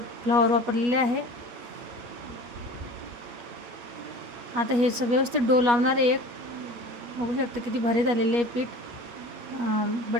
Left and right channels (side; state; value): left; late; 8.4 ms